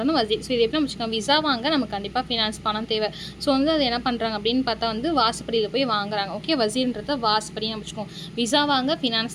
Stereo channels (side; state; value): both; identical; correlation 1.00